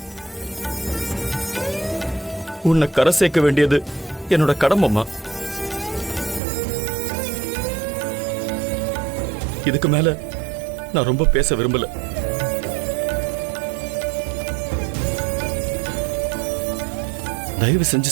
உன்னை கரை சேர்க்க வேண்டியது என்னோட கடமைமா. இதுக்கு மேல நான் ரொம்ப பேச விரும்பல. தயவு செஞ்சு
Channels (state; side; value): drops out; left; at 6.4 s